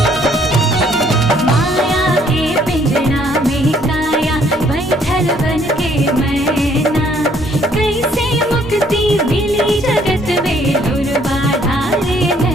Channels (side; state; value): both; normal; correlation 0.64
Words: माया के पिंजरा में काया बैठल बन के मैना। कैसे मुक्ति मिली जगत में दुर्बाधा रे